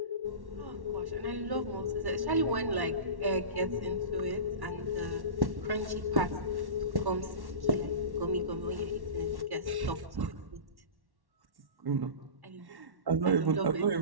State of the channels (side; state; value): left; late; 1.1 ms